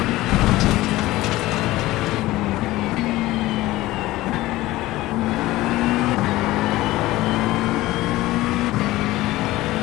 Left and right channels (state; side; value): quieter; right; 17.6 dB